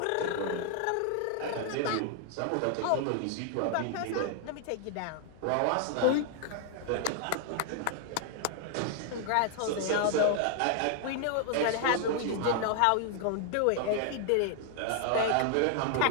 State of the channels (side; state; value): both; different; correlation 0.00